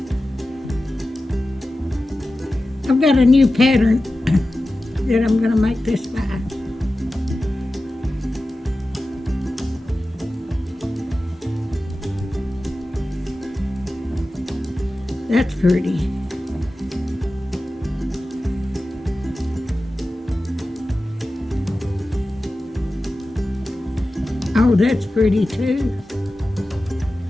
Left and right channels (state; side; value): normal; both; correlation 0.94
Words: I've got a new pattern that I'm going to make this by. That's pretty. Oh, that's pretty too.